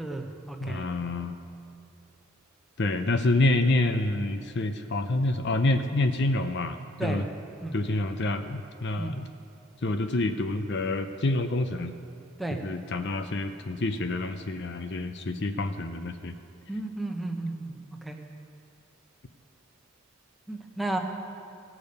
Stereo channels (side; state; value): both; normal; correlation 0.65